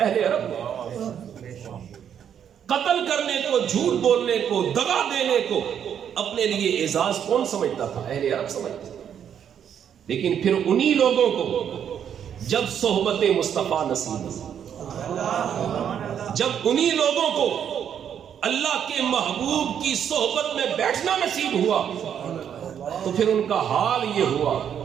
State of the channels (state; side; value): quieter; left; 8.7 dB